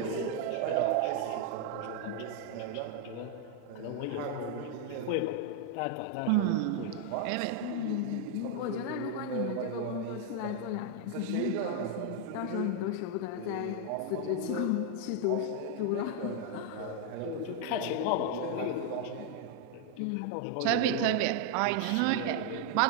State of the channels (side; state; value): both; different; correlation 0.00